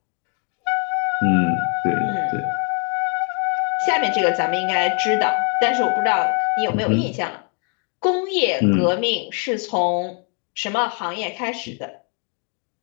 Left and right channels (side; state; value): right; quieter; 38.2 dB